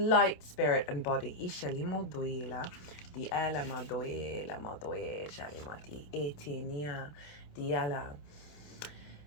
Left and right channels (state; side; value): late; right; 28 ms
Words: spirit, and body.